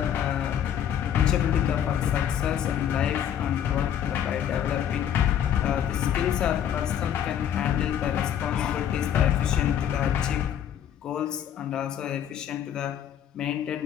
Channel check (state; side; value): quieter; right; 9.7 dB